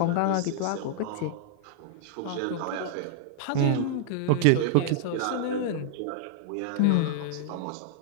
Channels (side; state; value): both; different; correlation -0.01